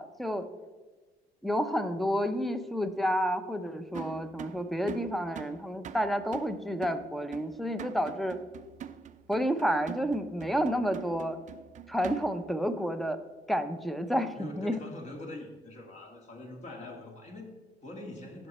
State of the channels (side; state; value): both; normal; correlation 0.83